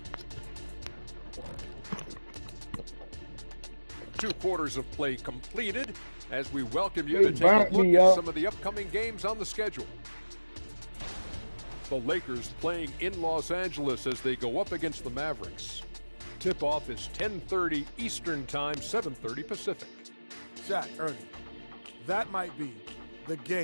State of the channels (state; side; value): inverted; both; correlation -1.00